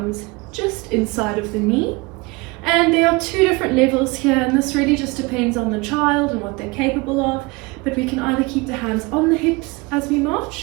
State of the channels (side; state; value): left; quieter; 25.3 dB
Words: just inside of the knee, and there are two different levels here, and this really just depends on the child and what they're capable of, but we can either keep the hands on the hips as we